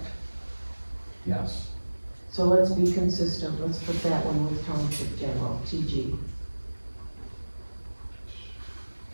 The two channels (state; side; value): inverted; both; correlation -1.00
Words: Yes. So let's be consistent, let's put that one with Township General, TG.